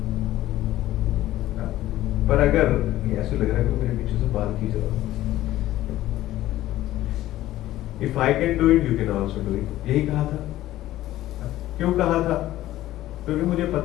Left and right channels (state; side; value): quieter; right; 14.7 dB